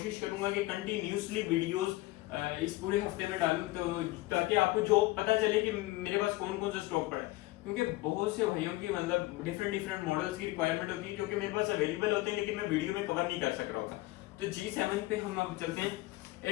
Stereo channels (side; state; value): right; quieter; 19.5 dB